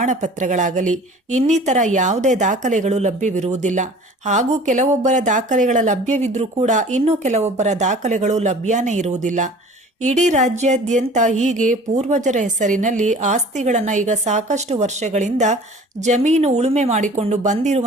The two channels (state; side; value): normal; both; correlation 0.45